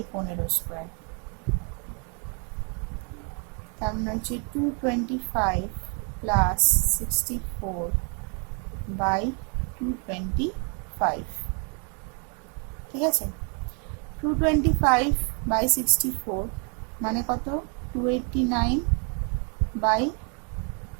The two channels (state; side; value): quieter; left; 38.3 dB